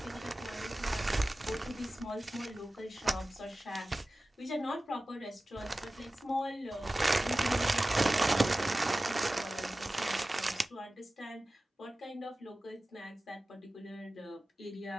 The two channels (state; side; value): normal; both; correlation 0.96